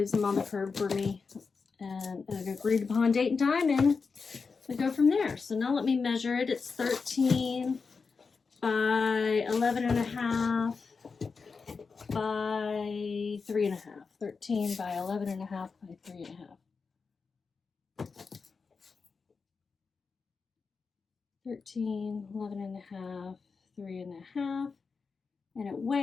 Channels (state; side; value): quieter; right; 4.9 dB